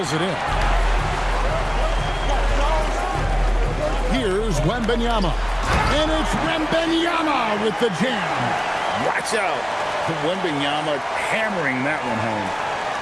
it in. Here's Wembanyama. And it's Wembanyama with the jam. Watch out. Wembanyama hammering that one home.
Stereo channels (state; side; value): identical; both; correlation 1.00